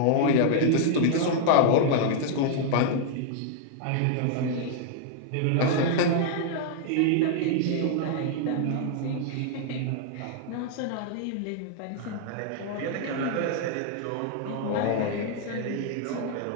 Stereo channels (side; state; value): both; different; correlation 0.00